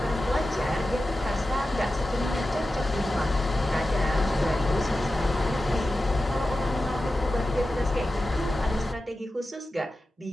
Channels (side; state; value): both; normal; correlation 0.93